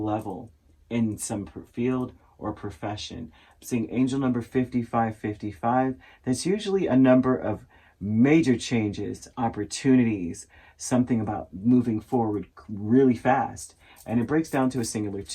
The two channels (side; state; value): both; identical; correlation 1.00